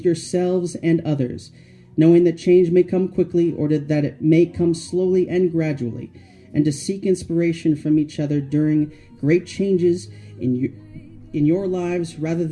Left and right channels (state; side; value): identical; both; correlation 1.00